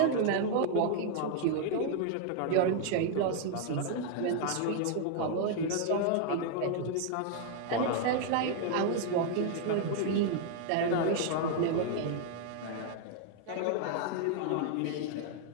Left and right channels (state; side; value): different; both; correlation 0.00